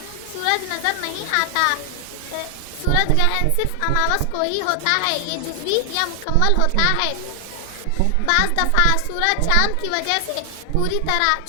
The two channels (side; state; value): both; different; correlation 0.00